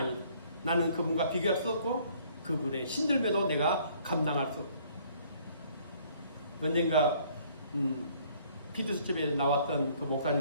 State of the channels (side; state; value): both; inverted; correlation -0.60